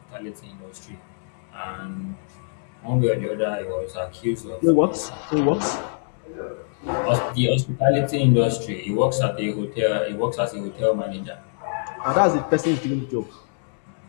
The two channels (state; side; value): silent; right; 62 dB below the other